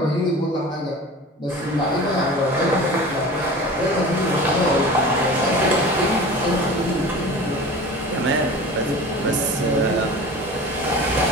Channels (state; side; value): normal; both; correlation 0.37